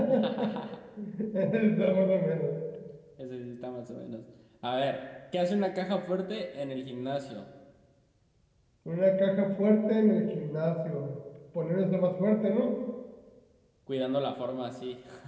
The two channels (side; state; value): both; identical; correlation 1.00